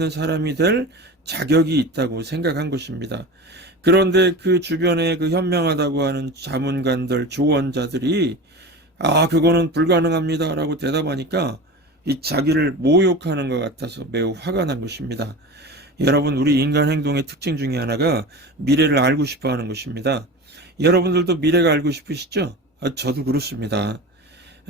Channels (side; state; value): both; normal; correlation 0.31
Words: 사람이 될 자격이 있다고 생각한 것입니다. 그런데 그 주변에 그 현명하다고 하는 자문관들, 조언자들이 그거는 불가능합니다 라고 대답하니까 이 자기를 모욕하는 것 같아서 매우 화가 난 것입니다. 여러분, 우리 인간 행동의 특징 중에 하나가 미래를 알고 싶어 하는 것입니다. 여러분들도 미래가 알고 싶으시죠? 저도 그렇습니다.